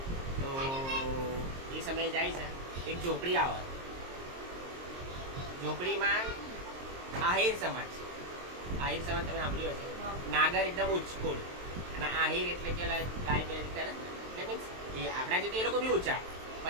તો એ સમયે જાય છે. એક ઝોપડી આવે. ઝોપડીમાં આહિર સમાજ. આહિર સમાજ તમે સાંભળ્યું હશે. નાગર એકદમ ઉચ્ચકુળ અને આહિર એટલે કે ગાય બે કરે એટલે મીન્સ એ આપણા જેથી એ લોકો બી ઊંચા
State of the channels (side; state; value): left; late; 23 ms